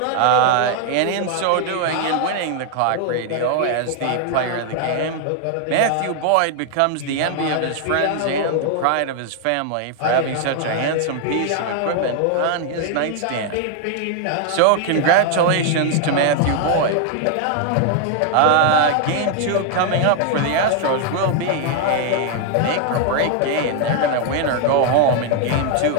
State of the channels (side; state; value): both; different; correlation 0.00